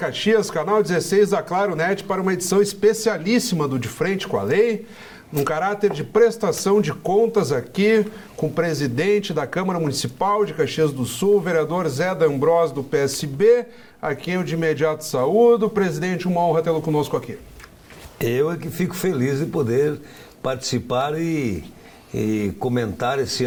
canal 16 da Claro Net, para uma edição especialíssima do De Frente com a Lei, num caráter de prestação de contas aqui com o presidente da Câmara Municipal de Caxias do Sul, o vereador Zé D'Ambrosio, do PSB, a quem eu de imediato saúdo. Presidente, uma honra tê-lo conosco aqui. Eu é que fico feliz de poder participar e comentar esse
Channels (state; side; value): identical; both; correlation 1.00